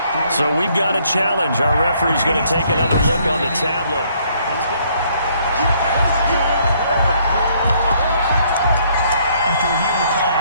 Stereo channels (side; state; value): both; inverted; correlation -0.66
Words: So we've got a challenge. Our referee's going to take another look on the tablet. After reviewing the play,